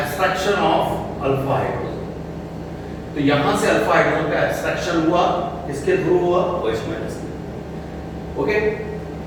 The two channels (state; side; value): identical; both; correlation 1.00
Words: of alpha hydrogen. तो यहां से अल्फा हाइड्रोजन का एब्स्ट्रैक्शन हुआ, किसके थ्रू हुआ, OH माइनस में। ओके,